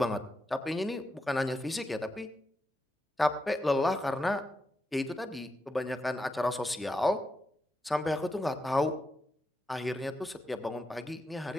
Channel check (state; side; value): normal; both; correlation 0.86